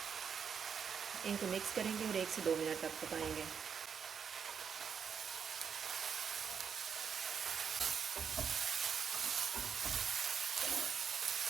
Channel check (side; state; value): left; quieter; 6.9 dB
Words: इनको मिक्स करेंगे और 1 से 2 मिनट तक पकाएंगे।